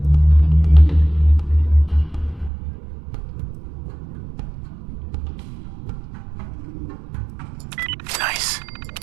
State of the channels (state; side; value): drops out; left; at 2.5 s